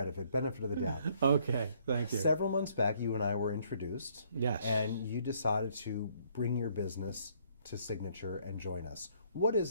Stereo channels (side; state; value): both; inverted; correlation -0.65